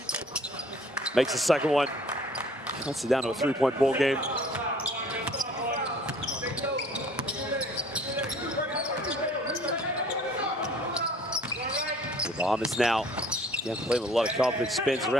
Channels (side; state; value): both; normal; correlation 0.53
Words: Makes the second one. Cuts it down to a 3-point ball game. The Bahamas now, again, playing with a lot of confidence, spins